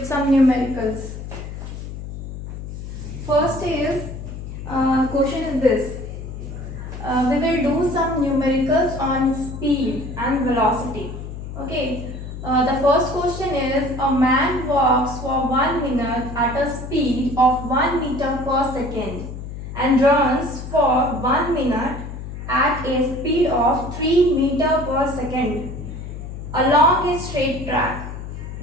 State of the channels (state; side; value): noise; left; hum, 9 dB below the sound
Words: some numericals. First is question is this. We will do some numericals on speed and velocity. Okay. The first question is a man walks for 1 minute at a speed of 1 meter per second and runs for 1 minute at a speed of 3 meter per second along a straight track.